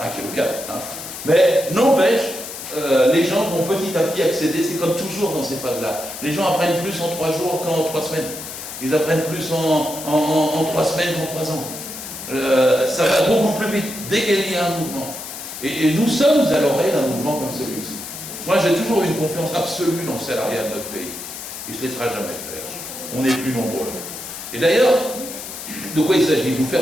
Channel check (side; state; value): left; noise; hiss, 10 dB below the sound